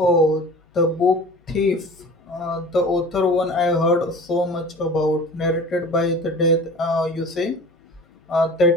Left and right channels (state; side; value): normal; both; correlation 0.40